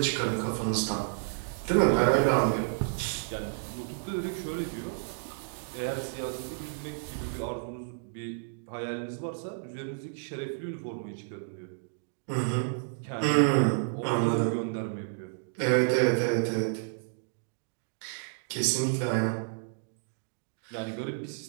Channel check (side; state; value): left; silent; digital silence